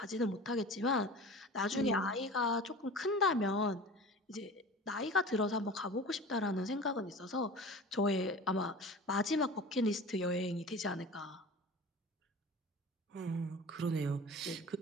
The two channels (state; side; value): normal; both; correlation 0.37